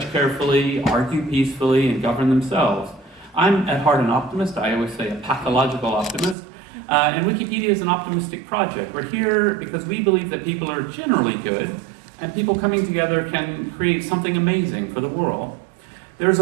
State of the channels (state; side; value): drops out; left; at 6.4 s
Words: carefully, argue peacefully, and govern themselves. I'm at heart an optimist. I always say a pathological optimist. And Wikipedia is an optimistic project. We're here because we believe that people are generally good, and people coming together can create something amazing for the world. There's